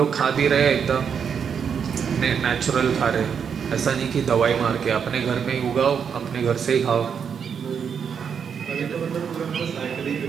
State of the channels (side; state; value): left; quieter; 7.1 dB